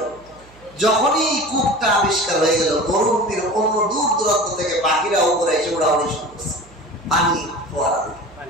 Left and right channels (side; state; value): right; noise; hum, 25 dB below the sound